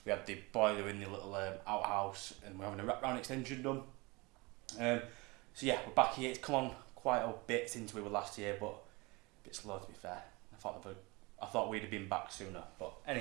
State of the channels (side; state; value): left; quieter; 25.1 dB